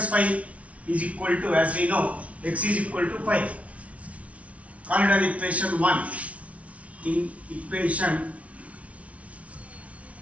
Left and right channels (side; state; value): left; late; 0.065 ms